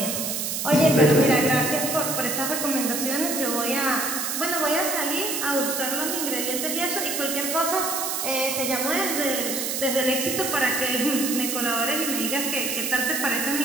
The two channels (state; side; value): noise; right; hiss, 2 dB below the sound